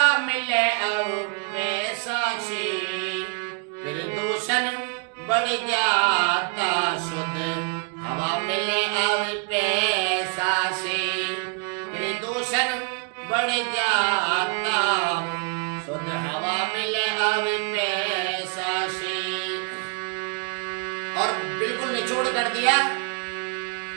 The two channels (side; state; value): left; quieter; 37.7 dB